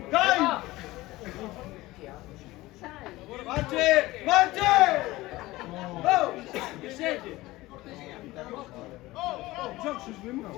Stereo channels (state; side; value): quieter; right; 18.8 dB